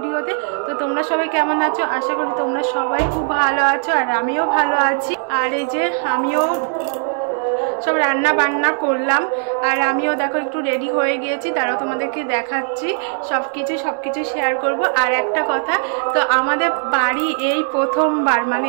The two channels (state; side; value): silent; left; 59 dB below the other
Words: তো তোমরা সবাই কেমন আছো? আশা করি তোমরা সবাই খুব ভালো আছো, আর আমিও ভালো আছি। আর এই যে আমিও সব রান্না বান্না করলাম, আর আমিও দেখো একটু রেডি হয়ে গিয়েছি, তারাও তোমাদেরকে দেখাচ্ছি সব কিছু শেয়ার করব। আর একটা কথা, তো আমাদের বাড়ি এই প্রথমবার, মানে